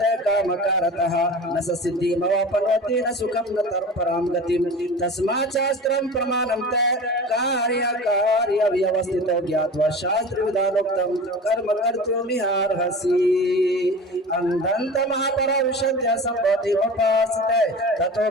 कामकारतः न सिद्धिमवापनोति न सुखं न तरपरां गतिं तस्मात् शास्त्रं प्रमाणं ते कार्य व्यवस्थितो ज्ञात्वा शास्त्र विधानोक्तं कर्म कर्तुमिहार्हसि। अंधन्त महापरौषध्य संभूति उपासते ततो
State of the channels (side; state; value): both; normal; correlation 0.35